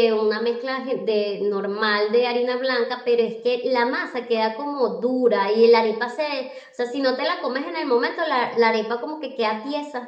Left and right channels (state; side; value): identical; both; correlation 1.00